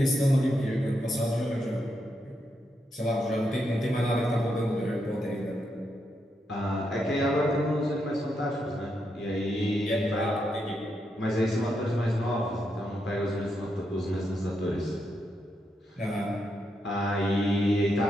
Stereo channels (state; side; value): normal; both; correlation 0.82